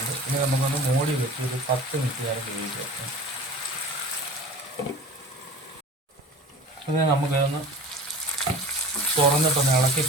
ഇനി നമുക്കൊന്ന് മൂടി വെച്ച് ഒരു 10 മിനിറ്റ് നേരം വേവിക്കാം. അത് നമുക്കതൊന്ന് തുറന്നിട്ടൊന്ന് ഇളക്കി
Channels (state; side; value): normal; both; correlation 0.39